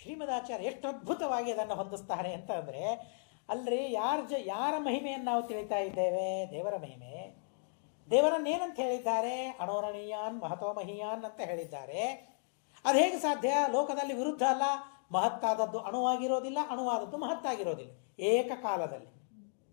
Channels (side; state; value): right; silent; digital silence